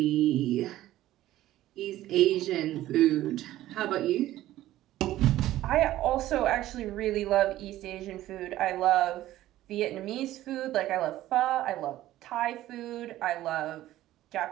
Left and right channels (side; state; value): left; quieter; 14.6 dB